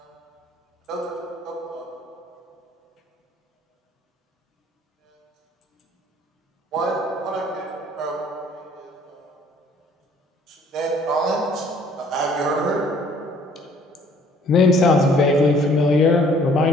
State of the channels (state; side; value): normal; both; correlation 0.58